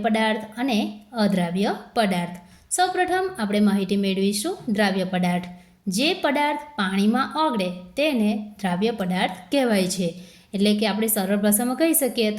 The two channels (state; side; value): identical; both; correlation 1.00